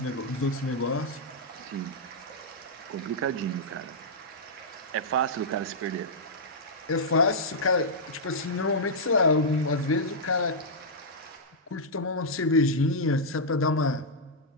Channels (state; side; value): normal; both; correlation -0.08